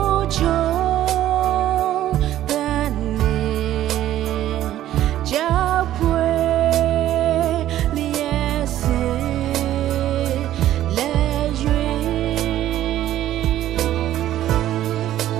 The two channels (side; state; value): left; quieter; 12.9 dB